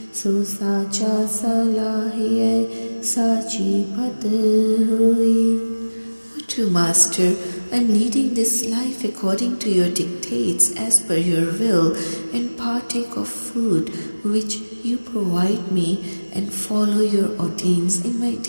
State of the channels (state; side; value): inverted; both; correlation -1.00